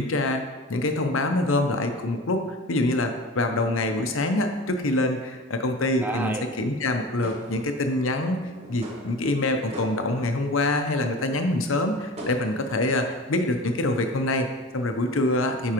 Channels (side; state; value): both; normal; correlation 0.36